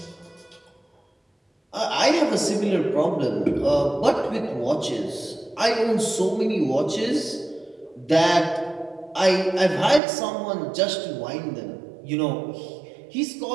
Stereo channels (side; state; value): left; drops out; at 10.0 s